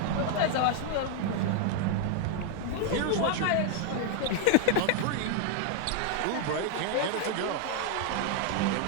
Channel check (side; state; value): both; different; correlation 0.01